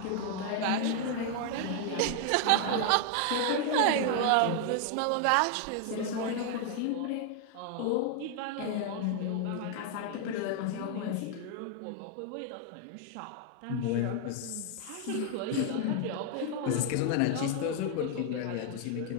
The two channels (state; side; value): different; both; correlation 0.00